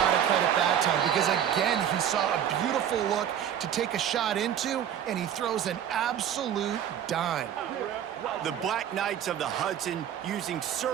of credit that time because, again, he saw a beautiful look to take a shot into, and he throws an absolute dime. The Black Knights of the Hudson using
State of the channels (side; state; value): left; quieter; 9.7 dB